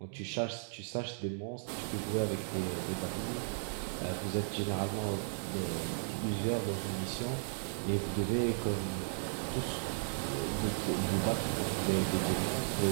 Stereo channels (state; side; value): silent; left; digital silence